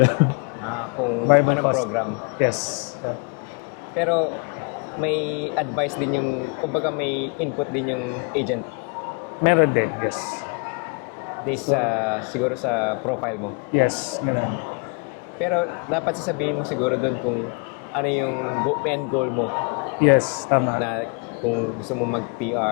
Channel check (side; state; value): right; quieter; 35.1 dB